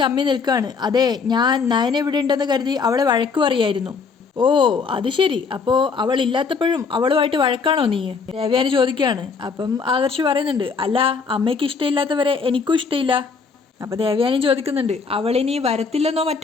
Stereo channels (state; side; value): quieter; right; 5.1 dB